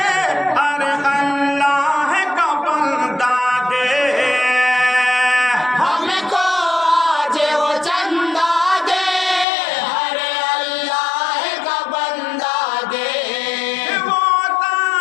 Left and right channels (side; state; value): right; drops out; at 9.5 s